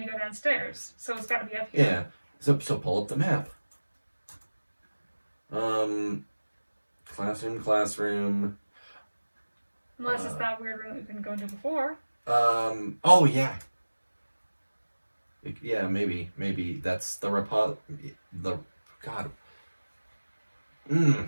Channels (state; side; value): inverted; both; correlation -1.00